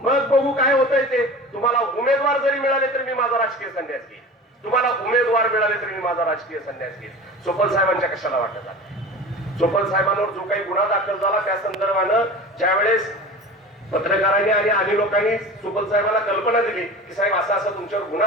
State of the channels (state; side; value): normal; both; correlation 0.35